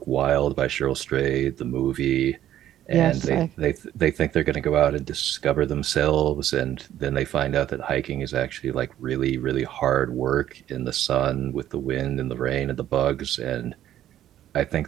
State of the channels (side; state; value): left; quieter; 12.0 dB